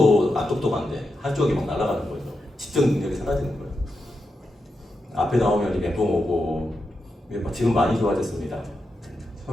안 똑똑한데 한쪽이 막 날아가는 거죠. 집중 능력이 사라지는 거예요. 앞에 나오면 멘붕 오고 지금 많이 좋아졌습니다.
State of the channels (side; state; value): both; normal; correlation 0.87